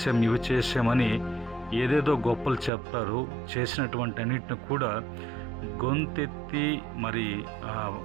ఇవి చేసామని ఏదేదో గొప్పలు చెప్తారు. చేసినటువంటి అన్నిటిని కూడా గొంతెత్తి మరి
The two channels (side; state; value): left; drops out; at 2.7 s